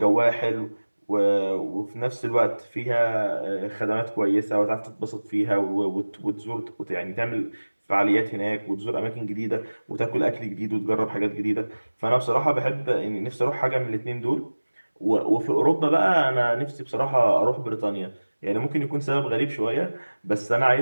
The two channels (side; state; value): both; inverted; correlation -1.00